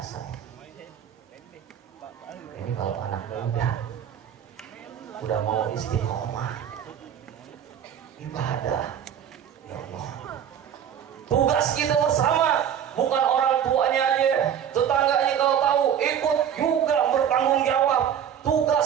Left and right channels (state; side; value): quieter; left; 9.0 dB